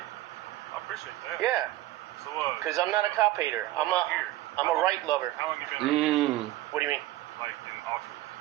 I appreciate that. Yeah, So, because I'm not a cop hater. I'm a right lover. How long you been around here? What do you mean? Like in Oxford?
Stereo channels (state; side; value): quieter; left; 15.9 dB